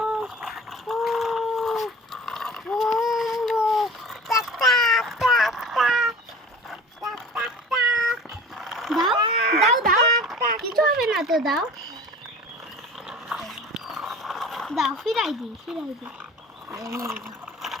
দাও দাও দাও, কিছু হবে না তো, দাও দাও, ফিরাই দি।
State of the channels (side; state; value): both; normal; correlation 0.41